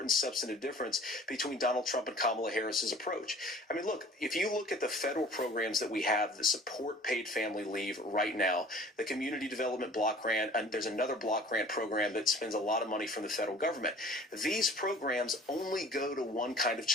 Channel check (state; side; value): normal; both; correlation 0.48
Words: substantive difference between Donald Trump and Kamala Harris's approach. I mean, look, if you look at the federal programs that we have that support paid family leave right now, the Community Development Block Grant, and there's another block grant program that spends a lot of money from the federal government. These programs only go to one kind of